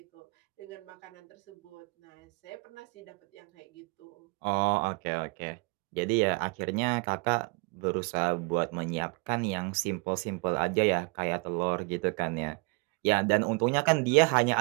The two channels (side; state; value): left; quieter; 30.2 dB